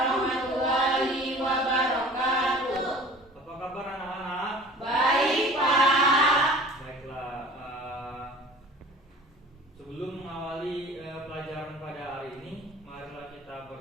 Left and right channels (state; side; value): normal; both; correlation 0.44